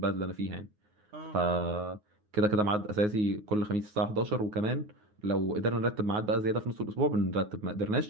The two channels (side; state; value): left; late; 9.5 ms